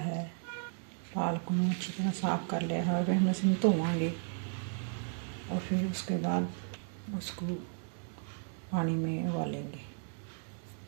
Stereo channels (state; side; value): silent; left; 55 dB below the other